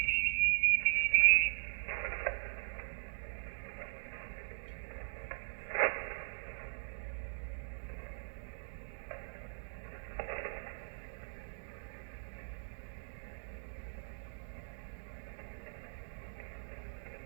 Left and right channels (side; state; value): left; silent; digital silence